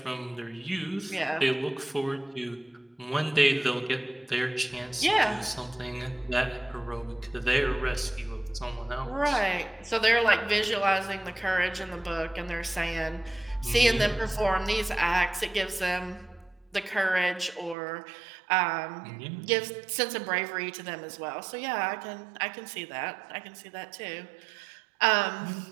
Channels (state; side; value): drops out; left; at 17.8 s